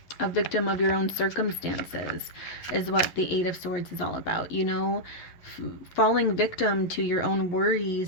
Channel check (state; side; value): late; right; 11 ms